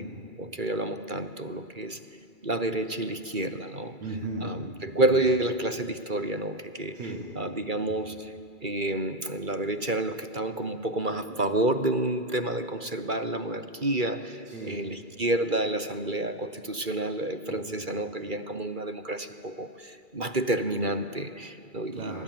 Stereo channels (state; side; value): late; left; 2.3 ms